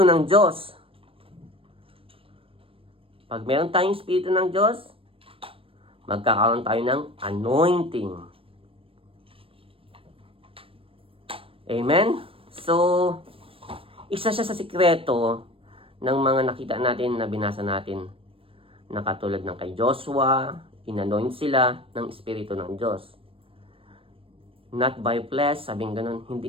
ng Diyos, pag meron tayong Espiritu ng Diyos, magkakaroon tayo ng anointing. Amen? So, isa siya sa sikreto ng mga nakita natin na binasa natin na katulad ng kay Joshua, inanoint sila ng Espiritu ng Diyos. Not by flesh, sabing ganun,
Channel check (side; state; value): left; late; 0.27 ms